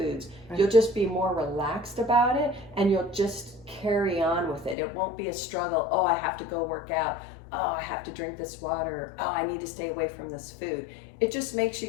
You'll just be more relaxed about it, and you'll just carry on with it. It won't be a struggle. Oh, I have to go work out. Oh, I have to drink this water. Oh, I need to stay away from this food. It just makes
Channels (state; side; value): drops out; right; at 4.8 s